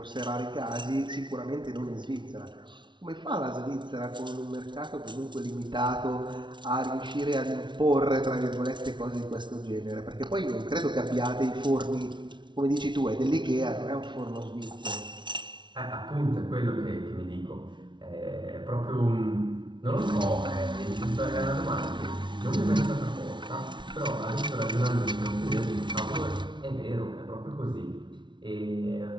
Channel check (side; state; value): left; late; 0.23 ms